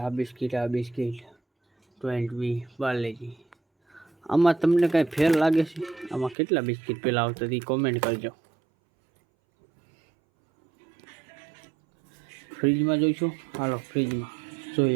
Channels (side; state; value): left; drops out; at 6.4 s